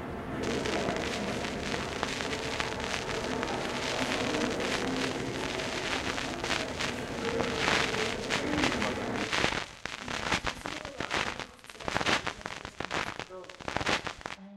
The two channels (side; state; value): both; identical; correlation 1.00